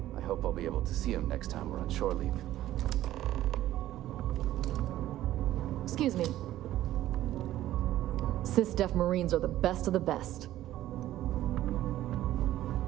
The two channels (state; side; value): quieter; left; 13.9 dB